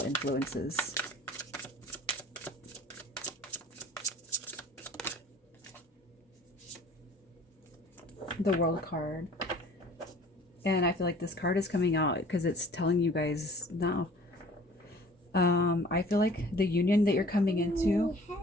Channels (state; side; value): normal; both; correlation 0.49